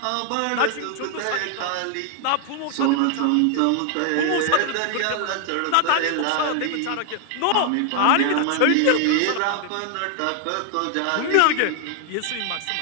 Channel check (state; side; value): different; both; correlation 0.00